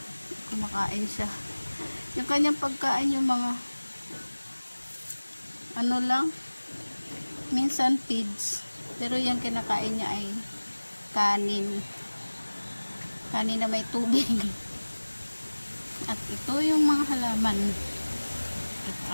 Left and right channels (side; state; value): both; inverted; correlation -1.00